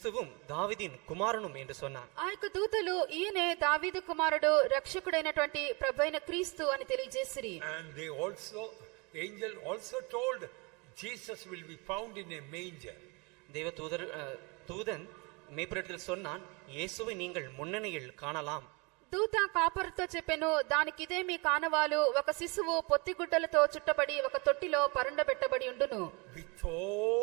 தாவீதின் குமாரனும் என்று சொன்னான். ఆ యొక్క దూతలు ఈయనే దావీదు కుమారుడు రక్షకుడైనటువంటి ప్రభువైన క్రీస్తు అని తెలియజేసిరి. And they also, the angel also told Jesus will be found in a manger. தூதன் மேய்ப்பரிடத்தில் சொன்னான், இயேசுவை நீங்கள் முன்னணியில் காணலாம். దూత కాపరుతో చెప్పెను, దానికి ఇదే మీ కానవాలు, ఒక శిశువు పొత్తిగుడ్డలతో చుట్టబడి ఒక తొట్టిలో పరుండబెట్టబడి ఉండును. With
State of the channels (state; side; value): quieter; left; 29.2 dB